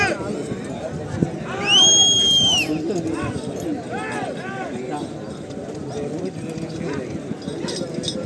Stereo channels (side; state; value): both; identical; correlation 1.00